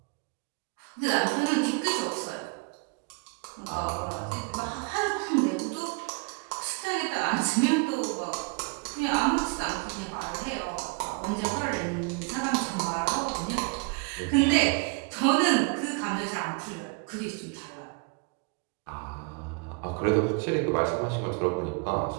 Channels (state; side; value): quieter; left; 30.8 dB